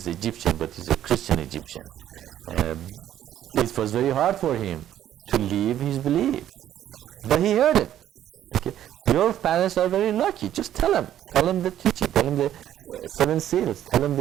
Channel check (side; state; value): left; quieter; 11.5 dB